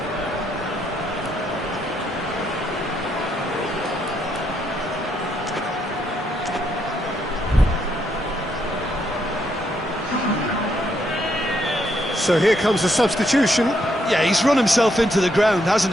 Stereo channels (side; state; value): both; normal; correlation 0.75